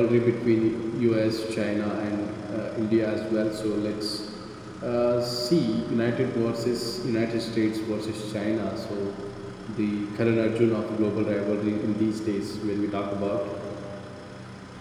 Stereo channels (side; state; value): both; identical; correlation 1.00